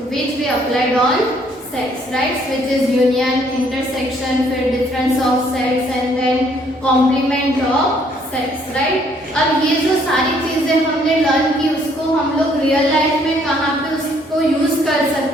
we applied on sets, right? Which is union, intersection, फिर difference of sets and then complement of sets, right? अब ये जो सारी चीजें हमने learn की उसको हम लोग रियल लाइफ में कहाँ पे उसको यूज कर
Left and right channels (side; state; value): both; normal; correlation 0.65